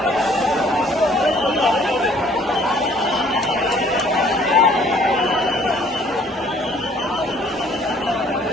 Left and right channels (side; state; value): both; normal; correlation 0.58